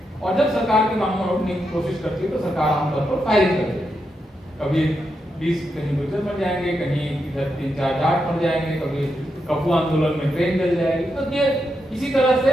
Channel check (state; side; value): normal; both; correlation 0.84